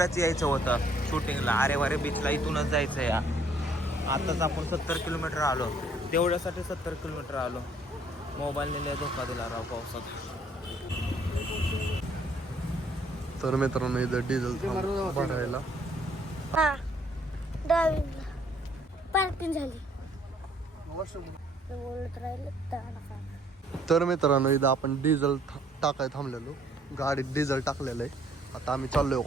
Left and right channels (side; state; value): both; normal; correlation 0.63